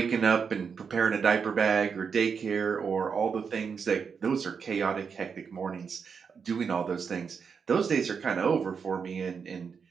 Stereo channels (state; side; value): quieter; left; 6.1 dB